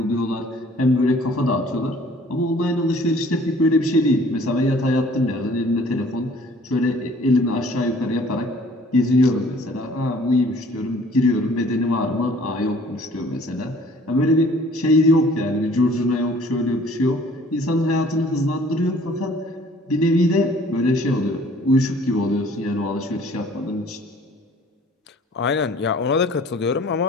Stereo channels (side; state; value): both; normal; correlation 0.54